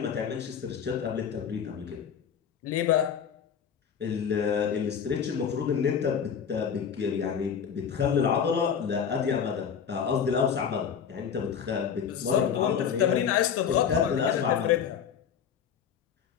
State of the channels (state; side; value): quieter; right; 7.6 dB